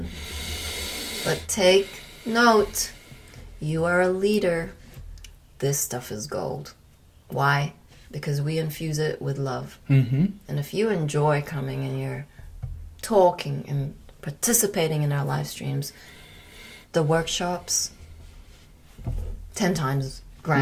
But take note. You are a leader. This stuff is gold. Why? Because we infuse it with love. Mm-hmm. And if you enjoy coming and you're talking and participating in our live streams, the workshops, 10 times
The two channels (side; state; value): both; identical; correlation 1.00